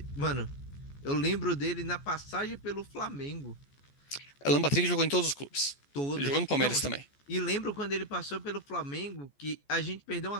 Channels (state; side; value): late; right; 14 ms